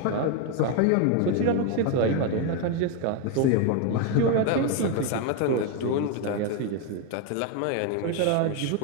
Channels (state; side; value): different; both; correlation 0.02